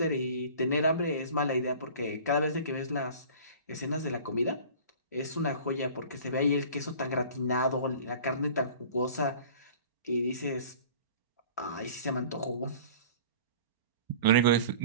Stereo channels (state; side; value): inverted; both; correlation -0.43